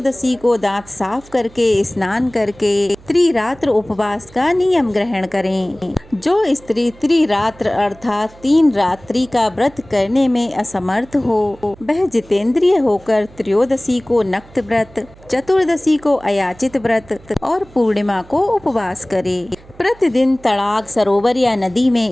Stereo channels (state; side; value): noise; right; hum, 24 dB below the sound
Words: को दांत साफ करके स्नान करके त्रिरात्र उपवास का नियम ग्रहण करें। जो स्त्री त्रिरात्र अर्थात 3 रात्रि का व्रत करने में असमर्थ हो वह जितेंद्रिय होकर त्रयोदशी को नक्त व्रत, चतुर्दशी को अयाचित व्रत और पूर्णिमा को उपवास करे। प्रतिदिन तड़ाग, सरोवर या नदी